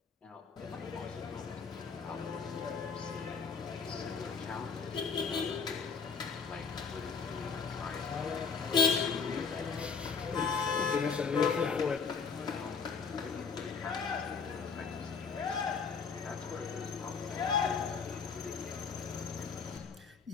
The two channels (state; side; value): quieter; right; 5.6 dB